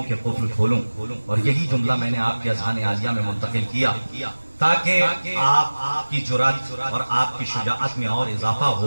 کے قفل کھولوں، اور یہی جملہ میں نے آپ کے اذہان عالیہ میں منتقل کیا تاکہ آپ کی جرأت اور آپ کی شجاعت میں اور اضافہ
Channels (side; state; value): both; inverted; correlation -1.00